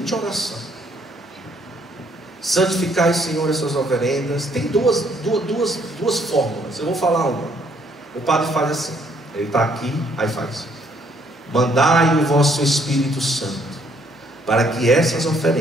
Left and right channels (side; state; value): both; normal; correlation 0.67